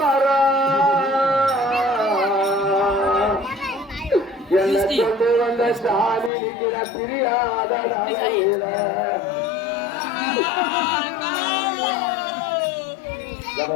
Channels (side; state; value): right; drops out; at 6.3 s